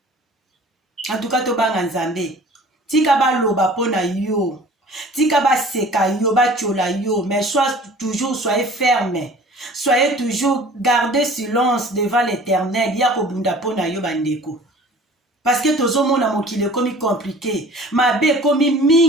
En tout cas tobanga Nzambe. Tika ba loba pona yo. Tika ba seka yo, ba chola yo. Mais soyez ferme. Soyez toujours, gardez silence devant l'Éternel. Yako bunda pona yo bandeko. parce que tozomona mokili ekomi compliqué mabe ekomi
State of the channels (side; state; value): both; normal; correlation 0.46